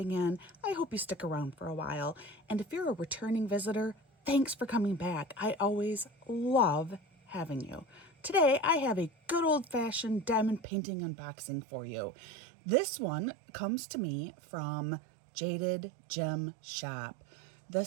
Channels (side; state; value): left; drops out; at 10.6 s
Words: in. I hope you stick around for a while. And if you're a returning visitor, thanks for coming back. I always love having you. Today, I have a good old-fashioned diamond painting unboxing for you. This one comes to me from Jaded Gem Shop.